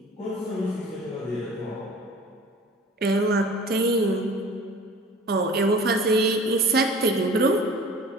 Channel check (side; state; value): both; normal; correlation 0.44